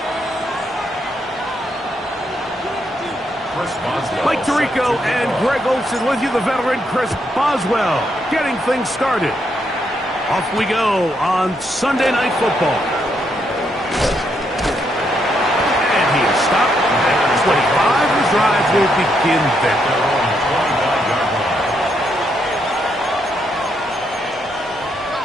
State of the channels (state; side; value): normal; both; correlation 0.77